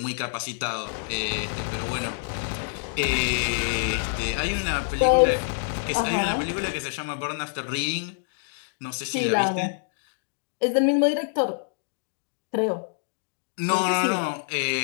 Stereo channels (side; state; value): right; silent; digital silence